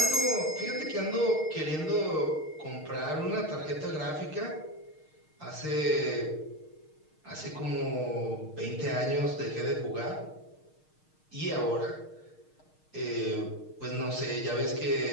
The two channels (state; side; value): late; right; 6.5 ms